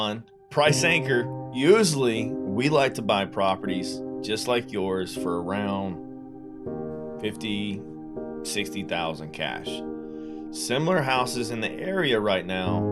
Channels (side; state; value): both; identical; correlation 1.00